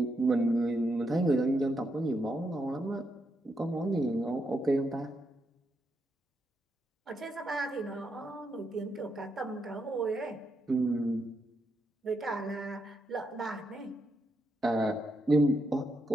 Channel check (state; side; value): normal; both; correlation 0.81